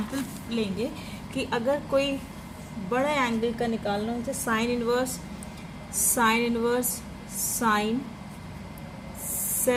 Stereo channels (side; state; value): both; identical; correlation 1.00